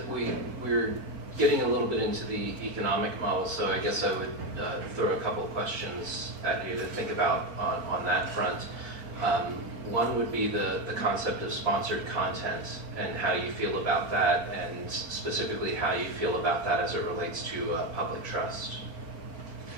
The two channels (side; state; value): left; late; 4.4 ms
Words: we're getting a little bit into the economic model, so I guess I would throw a couple of questions at you to think about on that front. One would be the concept of sponsored content and how you feel about that, and specifically how you feel about that as it relates to public trust.